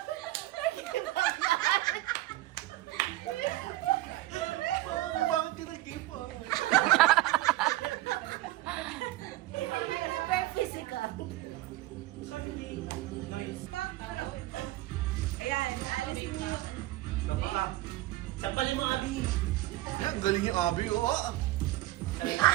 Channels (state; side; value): quieter; left; 17.4 dB